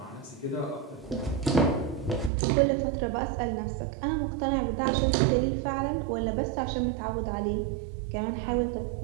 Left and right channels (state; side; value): drops out; left; at 2.3 s